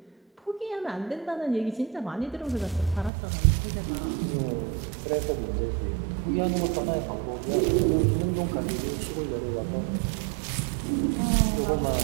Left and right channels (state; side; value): drops out; left; at 3.1 s